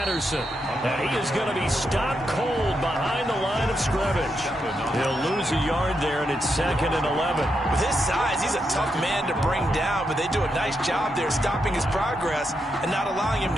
And he is going to be stopped cold behind the line of scrimmage. He'll lose a yard there, and it's 2nd and 11. With his size, he's a tough man to bring down, but they do a nice job there stopping his progress and not allowing him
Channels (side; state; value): both; normal; correlation 0.83